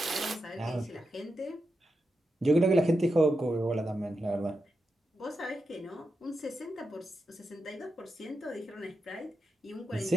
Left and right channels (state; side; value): normal; both; correlation 0.88